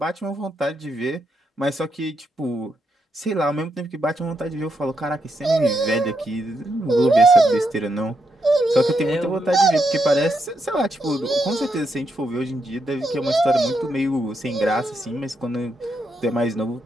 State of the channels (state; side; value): normal; both; correlation 0.81